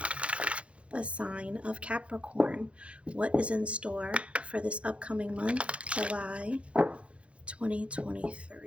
the sign of Capricorn. What is in store for this upcoming month, July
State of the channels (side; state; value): left; late; 0.061 ms